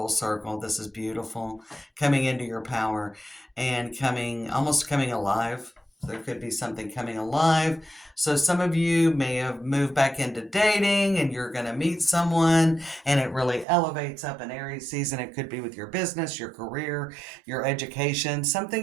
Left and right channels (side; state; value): left; drops out; at 13.7 s